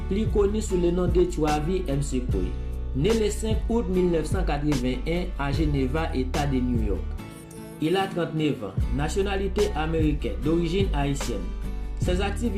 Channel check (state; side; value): identical; both; correlation 1.00